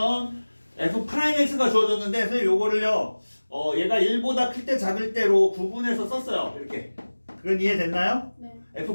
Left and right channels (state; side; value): inverted; both; correlation -1.00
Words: f'x가 주어졌는데 선생님 요거를요 얘가 1보다 클 때 작을 때로 구분해서 썼어요. 이렇게. 그건 이해됐나요? 네.